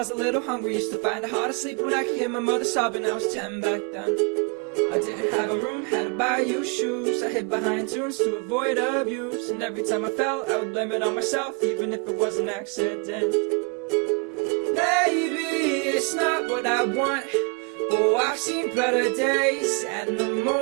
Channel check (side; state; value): left; quieter; 34.0 dB